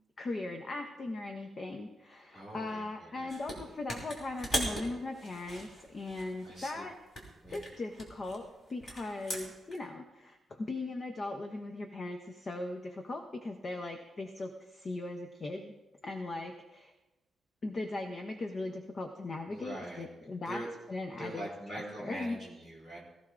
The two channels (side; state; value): both; normal; correlation 0.88